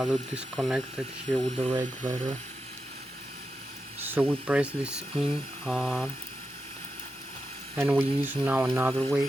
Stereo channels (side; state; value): both; normal; correlation 0.88